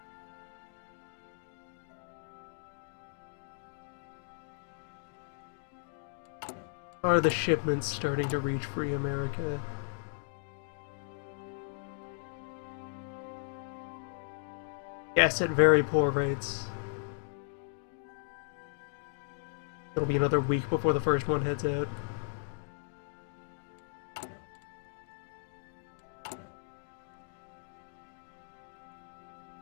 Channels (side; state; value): right; silent; digital silence